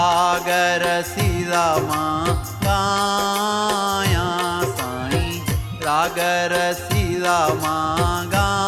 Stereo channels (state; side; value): identical; both; correlation 1.00